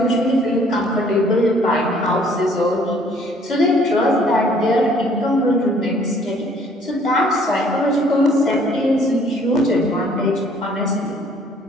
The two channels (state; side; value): normal; both; correlation 0.59